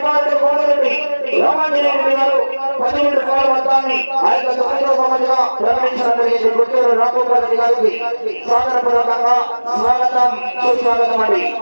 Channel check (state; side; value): inverted; both; correlation -1.00